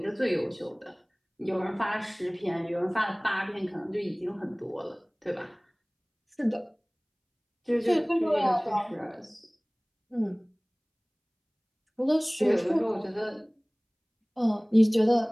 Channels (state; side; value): identical; both; correlation 1.00